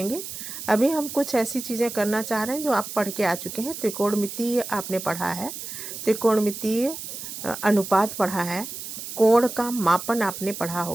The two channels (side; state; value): right; noise; hiss, 9 dB below the sound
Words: अभी हम कुछ ऐसी चीज़ें करना चाह रहे हैं जो आप पढ़ के आ चुके हैं। त्रिकोणमितीय आपने पढ़ा है, त्रिकोणमितीय अनुपात पढ़ा है, कोण का मापन आपने पढ़ा